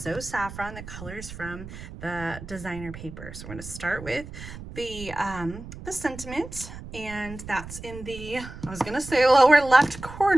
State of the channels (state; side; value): noise; right; rumble, 13 dB below the sound